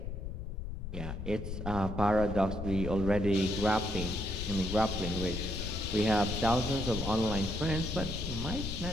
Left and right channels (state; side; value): noise; left; rumble, 6 dB below the sound